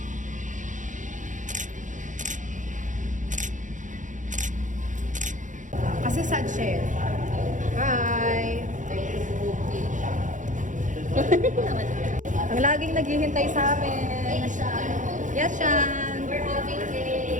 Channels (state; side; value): late; left; 0.37 ms